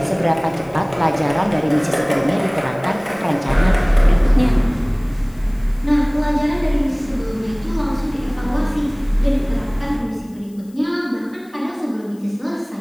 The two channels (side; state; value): left; noise; hiss, 29 dB below the sound